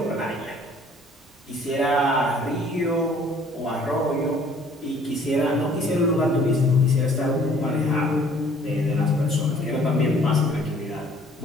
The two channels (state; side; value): normal; both; correlation 0.56